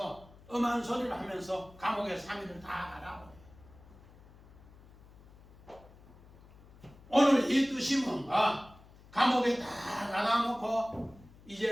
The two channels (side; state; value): left; noise; hum, 23 dB below the sound